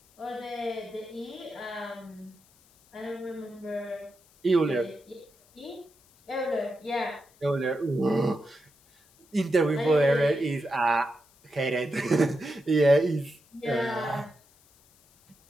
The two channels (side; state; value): left; noise; hiss, 30 dB below the sound